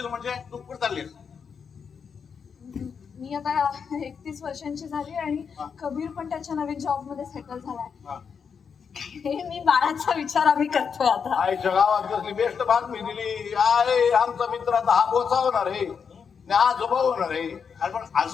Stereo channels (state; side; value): quieter; right; 6.4 dB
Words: म्हणजे तू कुठे चाललीस? मी आता 31 वर्षांची झाली आणि कबीर पण त्याच्या नवीन जॉब मध्ये सेटल झालाय. हे मी बाळाचा विचार आम्ही करतोय आता. आईच्या गावात कसली बेस्ट बातमी दिली. आहे आमचा मित्र आता हा बोचा होणार आहे, आजोबा होणार आहे. अरे पण